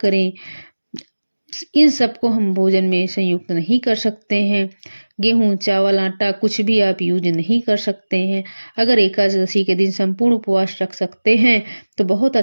इन सबको हम भोजन में संयुक्त नहीं कर सकते हैं। गेहूं, चावल, आटा कुछ भी आप यूज नहीं कर सकते हैं। अगर एकादशी के दिन संपूर्ण उपवास रख सकते हैं तो बहुत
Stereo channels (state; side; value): inverted; both; correlation -1.00